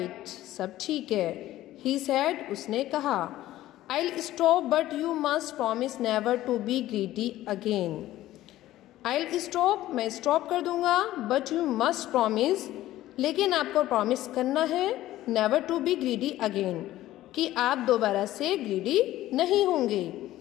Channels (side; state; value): right; quieter; 14.9 dB